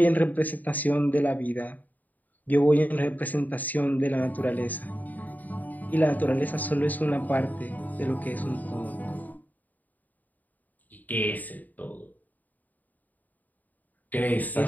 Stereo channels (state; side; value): late; right; 0.082 ms